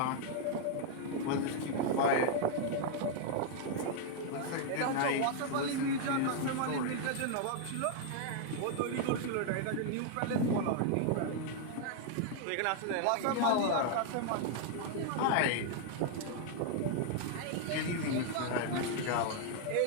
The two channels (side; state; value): both; different; correlation 0.00